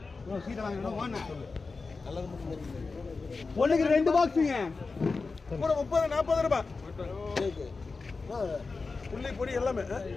சீட்டை வாங்கினா ஒன்றுக்கு 2 பாக்ஸுங்க. கூட 30 40 ரூபா. புள்ளி பொடி எல்லாமே.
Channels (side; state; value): right; quieter; 4.2 dB